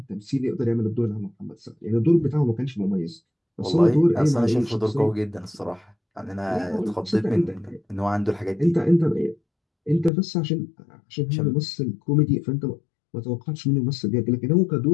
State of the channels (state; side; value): drops out; right; at 10.1 s